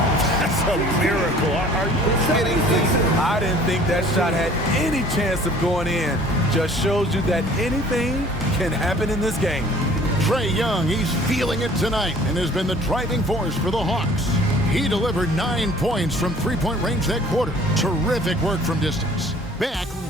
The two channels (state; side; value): normal; both; correlation 0.52